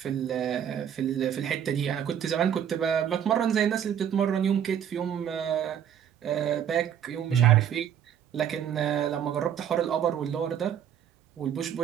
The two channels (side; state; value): left; quieter; 9.3 dB